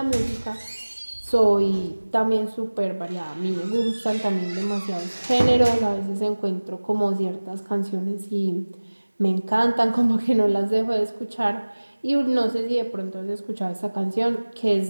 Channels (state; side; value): inverted; both; correlation -1.00